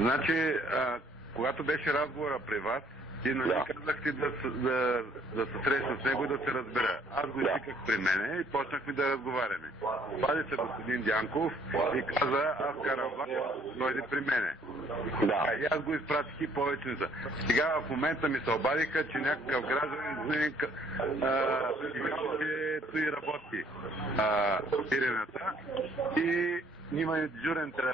когато беше разговора при вас, ти нали казахте да се срещна с него и да се разбера. Аз го извиках при мене и почнахме да разговаряме. Пади се господин Дянков и каза, аз карам влак, дойде при мене. И аз го изпратих и повече не са. Сега в момента ми се обадиха, че някакъв гражданин че той работи сирената и има дежурен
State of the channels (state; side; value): normal; both; correlation 0.61